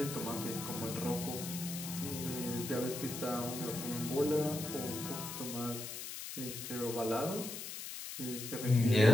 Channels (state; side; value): noise; left; hiss, 7 dB below the sound